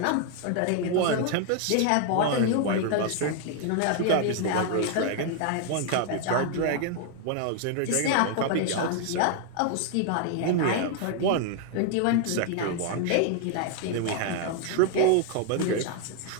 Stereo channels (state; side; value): different; both; correlation 0.00